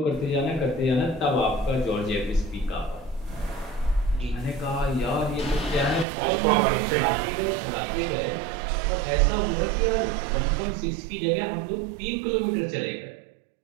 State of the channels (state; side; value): drops out; left; at 6.1 s